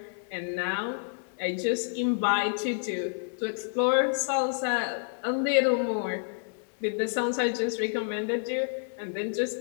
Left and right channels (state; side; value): silent; right; digital silence